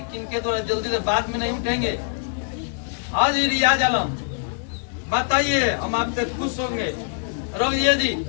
किनके द्वारा? जल्दी से बाद में नहीं उठेंगे। हाँ जी रियाज आलम बताइए, हम आपसे खुश होंगे। रोहिए जी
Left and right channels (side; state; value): right; silent; digital silence